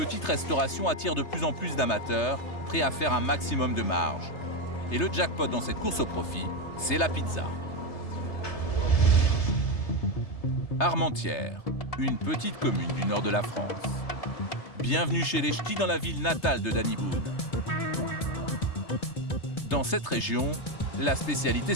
restauration attire de plus en plus d'amateurs, prêts à faire un maximum de marge. Et le jackpot dans cette course au profit, c'est la pizza. Armentières, une petite commune du nord de la France. Bienvenue chez les Ch'tis dans la ville natale de Danny Boone. Dans cette région, la spécialité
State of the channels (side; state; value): right; late; 3.3 ms